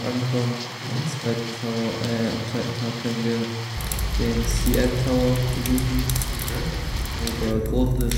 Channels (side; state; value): both; identical; correlation 1.00